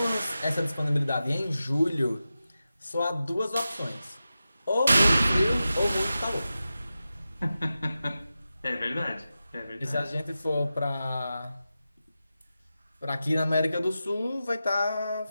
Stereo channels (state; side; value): inverted; both; correlation -0.92